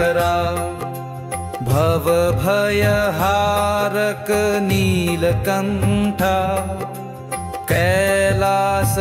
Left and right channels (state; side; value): identical; both; correlation 1.00